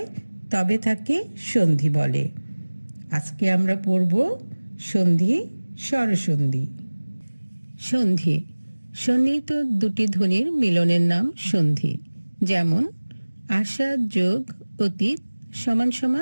তবে তাকে সন্ধি বলে। আজকে আমরা পড়ব সন্ধি, স্বরসন্ধি। সন্ধি, সন্নিহিত দুটি ধ্বনির মিলনের নাম সন্ধি। যেমন, আশা যোগ অতীত সমান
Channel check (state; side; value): inverted; both; correlation -1.00